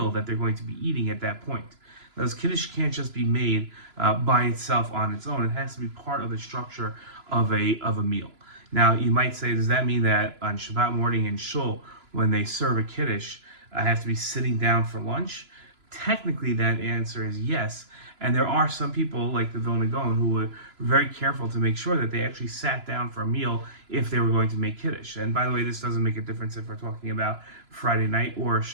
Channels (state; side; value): late; left; 3.0 ms